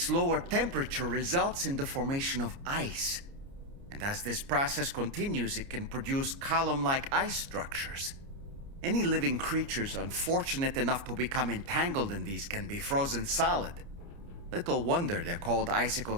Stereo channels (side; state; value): left; late; 29 ms